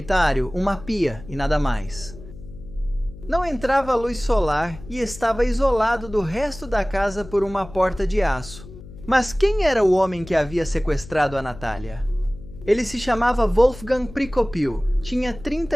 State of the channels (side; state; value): left; noise; hum, 16 dB below the sound